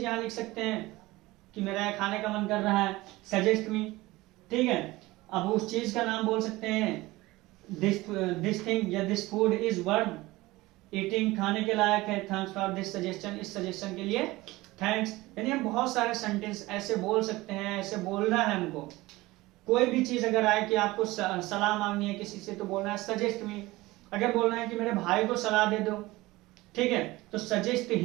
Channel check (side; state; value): left; quieter; 19.7 dB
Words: यहाँ लिख सकते हैं कि मेरा खाने का मन कर रहा है, सजेस्ट मी, ठीक है। अब उस चीज का नाम बोल सकते हैं, दिस थिंग या this food is worth eating, खाने के लायक है, थैंक्स फॉर दिस सजेशन, इस सजेशन के लिए थैंक्स। यानी हम बहुत सारे सेंटेंस ऐसे बोल सकते हैं, ऐसे बोलना है हमको। कोई भी चीज अगर आए कि आपको सलाह मांगनी है किसी से तो बोलना है सजेस्ट मी। अगर बोलना है कि मेरे भाई को सलाह दे दो, ठीक है, तो सजेस्ट